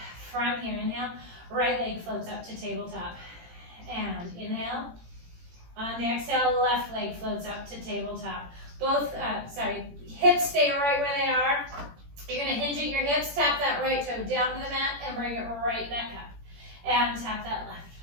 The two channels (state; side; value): late; left; 17 ms